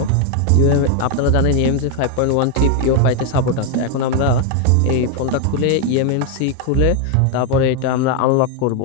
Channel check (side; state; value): both; different; correlation 0.01